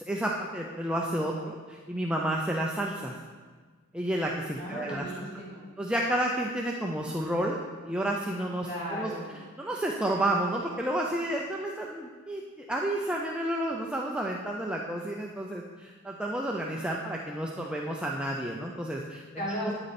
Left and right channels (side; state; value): both; normal; correlation 0.62